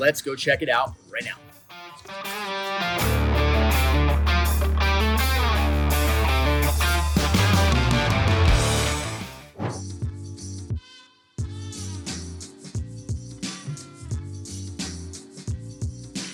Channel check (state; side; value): identical; both; correlation 1.00